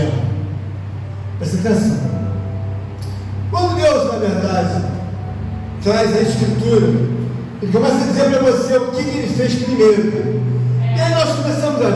Presta atenção. Quando Deus, na verdade, traz a Escritura, Ele começa a dizer para você o que Ele fez primeiro. E aí nós começamos a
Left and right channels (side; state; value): both; identical; correlation 1.00